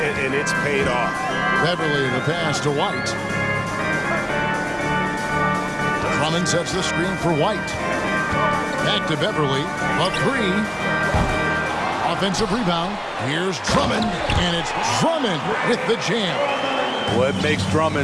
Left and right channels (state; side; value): identical; both; correlation 1.00